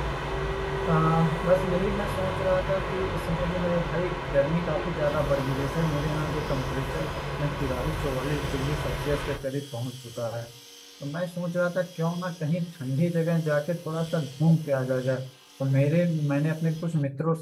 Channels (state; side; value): identical; both; correlation 1.00